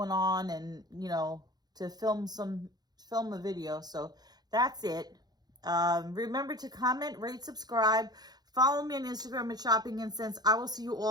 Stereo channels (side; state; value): left; late; 0.19 ms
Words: on, and you know, to film a video. So that's it. Remember to comment, rate, subscribe, follow me on Instagram at Shopping and Sense. I will see you